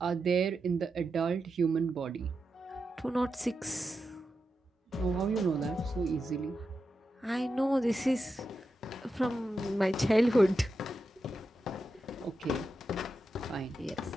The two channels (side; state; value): both; normal; correlation 0.88